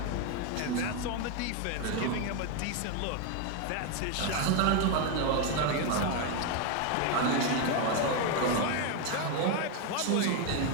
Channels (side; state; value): both; different; correlation 0.02